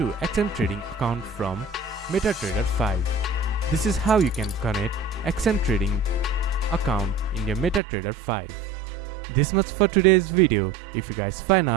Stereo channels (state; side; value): drops out; left; at 7.8 s